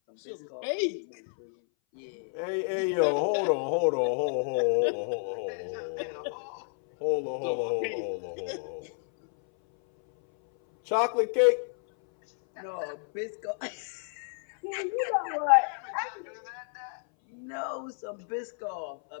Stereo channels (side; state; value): right; silent; 58 dB below the other